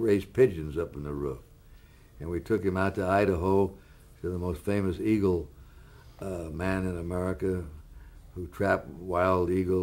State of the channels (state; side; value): identical; both; correlation 1.00